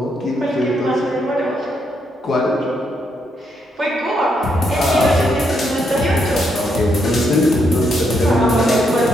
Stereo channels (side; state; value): both; normal; correlation 0.77